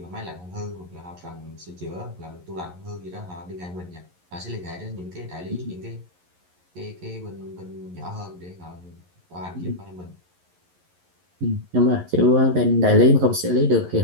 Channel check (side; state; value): left; late; 11 ms